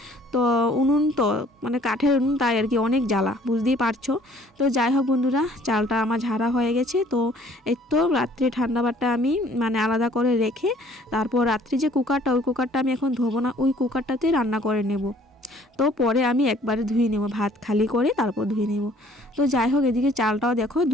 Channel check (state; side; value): normal; both; correlation 0.57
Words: তো উনুন তো মানে কাঠের উনুন, তাই আর কি অনেক জ্বালা, বুঝতেই পারছো। তো যাই হোক বন্ধুরা, চালটা আমার ঝাড়া হয়ে গেছে। তো এই তো রাত্রে ঠান্ডা ভাতটা আমি মানে আলাদা করে রেখে তারপর রাত্রি যে কুকারটা, ওই কুকারটা আমি এখন ধোবো না, ওই কুকারটাতে রান্না করে নেব। তো পরে আমি একবারে ধুয়ে নেব, ভাত খালি করে তারপর ধুয়ে নেব। তো যাই হোক, এদিকে চালটাও দেখো